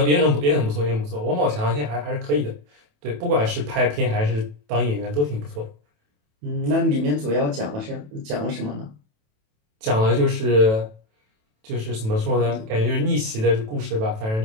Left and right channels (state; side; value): late; left; 27 ms